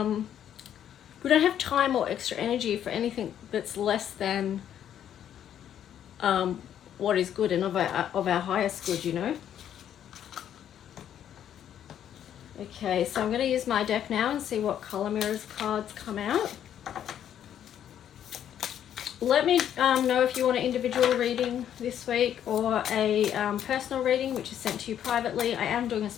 don't have time or extra energy for anything that's less than what is good and of our highest good, you know. Okay, so I'm going to use my deck now and see what color mirrors cards come out. Let me know if you want an individual reading this week or a personal reading, which is sent to you privately. I am doing a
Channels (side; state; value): right; quieter; 10.0 dB